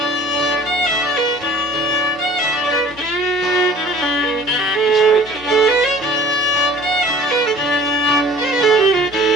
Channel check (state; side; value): noise; left; hum, 21 dB below the sound